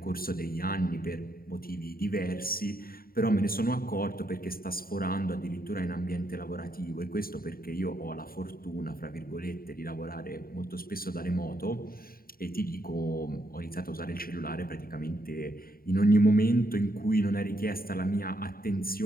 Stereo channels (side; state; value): right; late; 0.43 ms